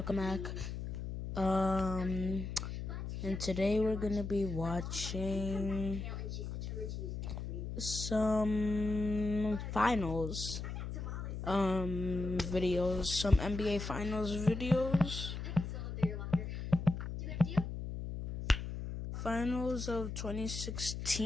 Welcome back. And today we're gonna be watching some finals, videos, some NBA finals videos. Finals of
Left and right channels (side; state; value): left; noise; hum, 5 dB below the sound